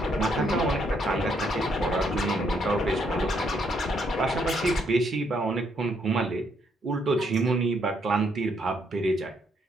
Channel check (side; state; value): both; normal; correlation 0.72